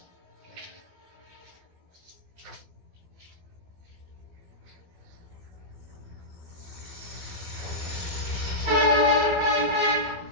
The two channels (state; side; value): late; left; 12 ms